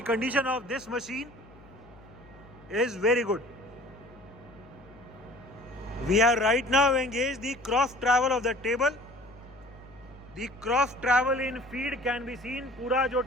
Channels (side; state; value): left; noise; hum, 23 dB below the sound